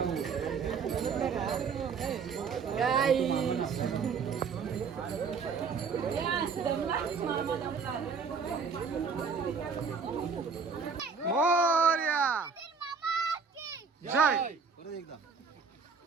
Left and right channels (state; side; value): quieter; left; 5.5 dB